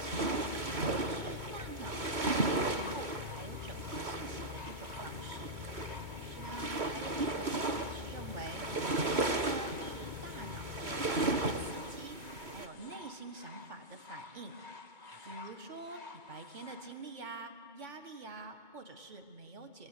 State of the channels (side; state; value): left; late; 2.2 ms